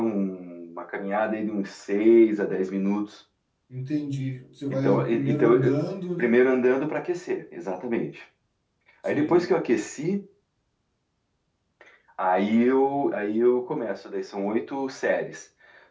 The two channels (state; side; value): identical; both; correlation 1.00